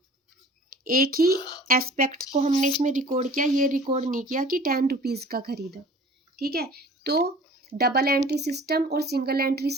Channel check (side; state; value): both; normal; correlation 0.47